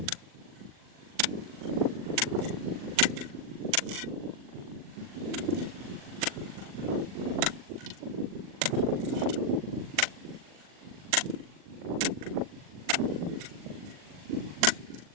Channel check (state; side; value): late; left; 40 ms